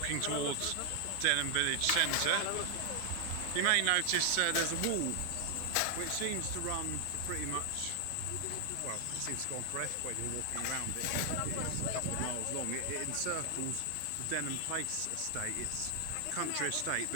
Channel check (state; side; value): different; both; correlation 0.00